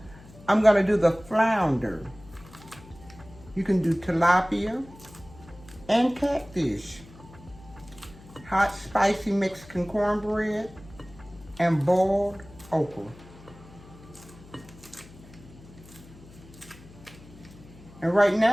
I'm gonna do the flounder. You can do tilapia and catfish. Hot, spicy Mexican cornbread and boiled okra. And right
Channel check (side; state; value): left; noise; hum, 21 dB below the sound